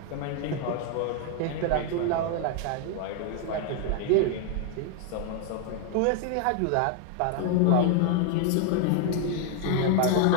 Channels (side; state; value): both; different; correlation 0.00